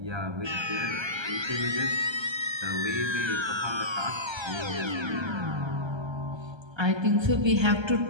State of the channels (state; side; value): late; left; 1.3 ms